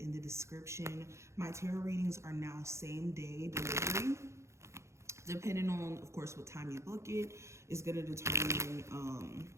the description. My tarot readings are now same day delivery. Depending on, of course, what time you book it, is going to determine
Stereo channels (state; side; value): late; left; 0.14 ms